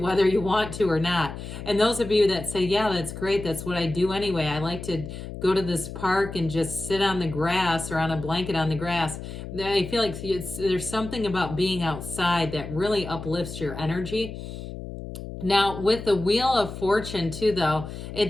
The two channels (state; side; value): noise; left; hum, 9 dB below the sound